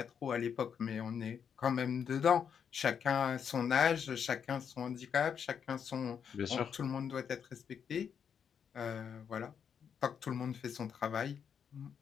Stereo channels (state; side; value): quieter; right; 7.5 dB